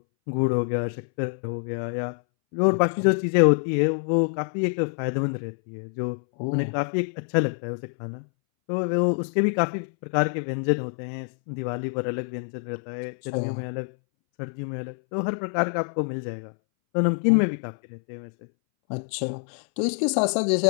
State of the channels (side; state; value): right; silent; 61 dB below the other